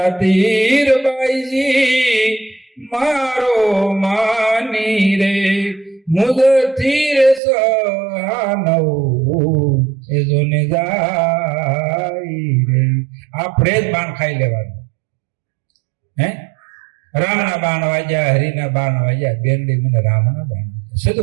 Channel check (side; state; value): left; drops out; at 7.4 s